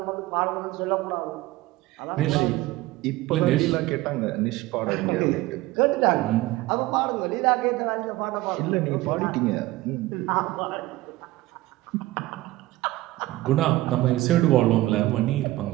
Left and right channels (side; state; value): left; quieter; 18.0 dB